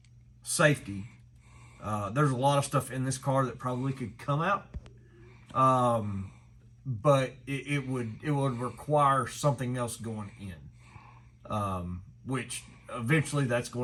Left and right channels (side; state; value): both; identical; correlation 1.00